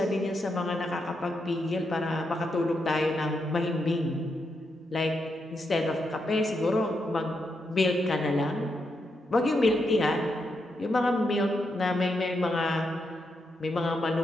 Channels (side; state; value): both; normal; correlation 0.83